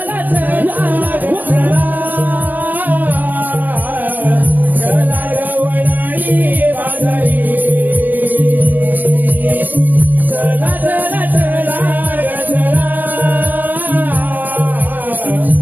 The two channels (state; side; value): late; left; 0.088 ms